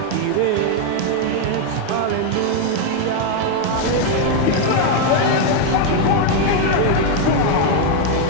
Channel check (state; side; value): different; both; correlation 0.01